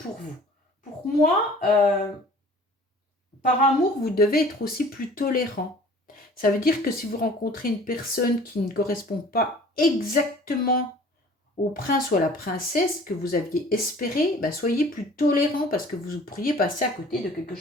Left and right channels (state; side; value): normal; both; correlation 0.48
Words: vous. Pour moi, par amour, vous devez être aussi plus tolérant. Ça veut dire que si vous rencontrez une personne qui ne correspond pas exactement au prince ou à la princesse que vous aviez espéré, bah soyez plus tolérant parce que vous pourriez passer à côté de quelque